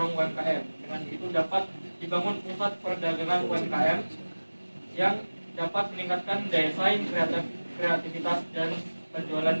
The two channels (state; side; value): inverted; both; correlation -1.00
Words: UMKM. Dengan itu dapat dibangun pusat perdagangan UMKM yang dapat meningkatkan daya saing, kreativitas, dan penjualan